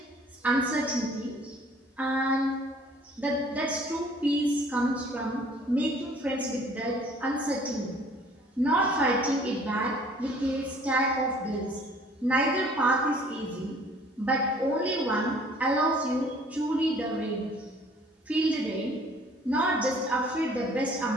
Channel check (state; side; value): normal; both; correlation 0.55